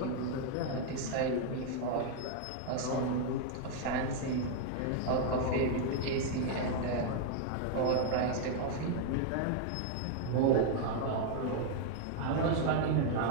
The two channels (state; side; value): different; both; correlation 0.00